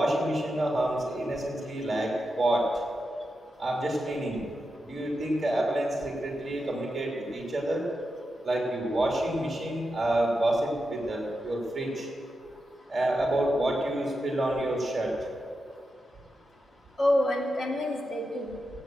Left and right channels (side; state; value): both; normal; correlation 0.88